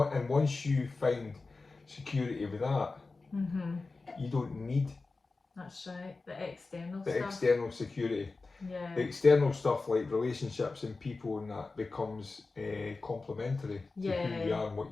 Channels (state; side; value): quieter; right; 3.8 dB